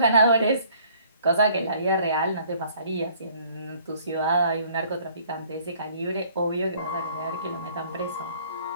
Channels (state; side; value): inverted; both; correlation -0.59